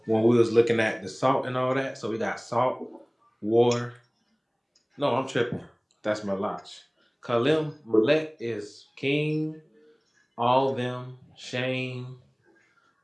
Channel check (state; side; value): identical; both; correlation 1.00